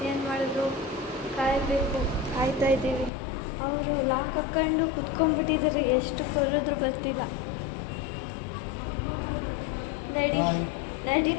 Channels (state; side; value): drops out; right; at 3.1 s